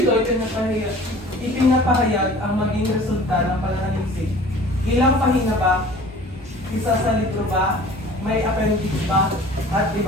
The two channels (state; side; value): normal; both; correlation 0.46